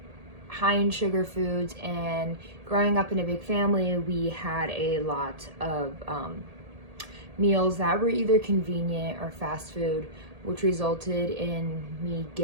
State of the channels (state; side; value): late; left; 1.8 ms